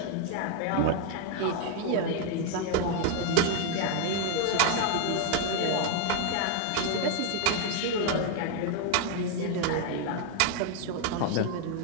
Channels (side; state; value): both; different; correlation 0.01